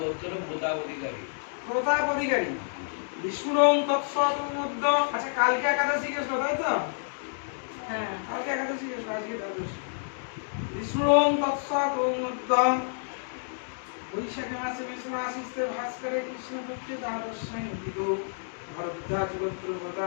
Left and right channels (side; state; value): right; silent; digital silence